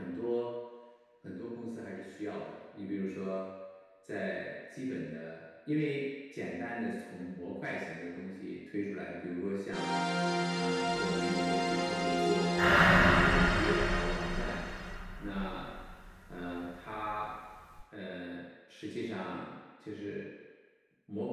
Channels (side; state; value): both; identical; correlation 1.00